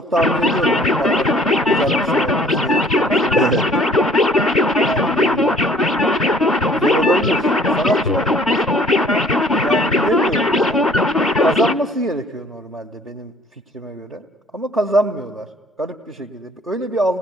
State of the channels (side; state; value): both; normal; correlation 0.55